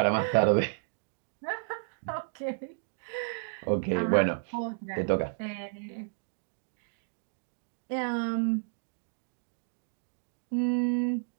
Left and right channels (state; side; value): silent; left; digital silence